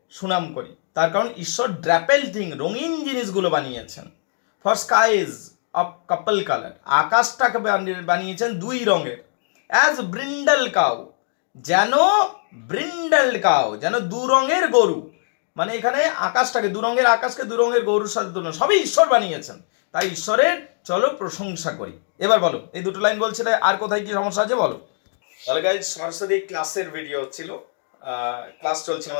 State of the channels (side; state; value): right; silent; digital silence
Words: সুনাম করি, তার কারণ ঈশ্বর ড্রাপেল থিং, রঙিন জিনিসগুলো বানিয়েছেন। For skies of couple colour, আকাশটাকে বানিয়েছেন দুই রঙের। অ্যাজ ব্রিন্ডাল কাউ, যেন ব্রিন্ডাল কাউ, যেন দু রঙের গরু, মানে এখানে আকাশটাকে, দু রঙের আকাশকে দু রঙের গরুর সাথে তুলনা, সবই ঈশ্বর বানিয়েছেন, তাই ঈশ্বরের চলো প্রশংসা করি। এবার বলো, এই দুটো লাইন বলছিলে, আর কোথায় কি সমস্যা আছে বলো। তাহলে গাইজ সরাসরি ক্লাসের ভিডিও হচ্ছিল, ক্লাস চলছে